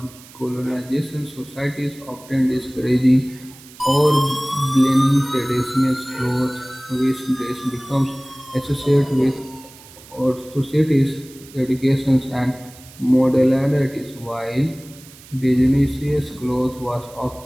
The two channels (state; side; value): noise; right; hiss, 21 dB below the sound